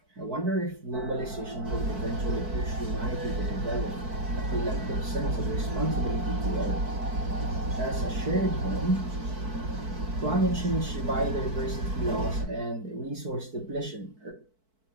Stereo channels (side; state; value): left; late; 4.6 ms